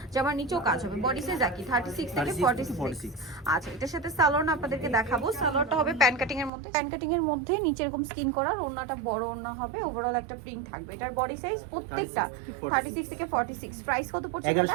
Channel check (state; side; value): drops out; left; at 6.5 s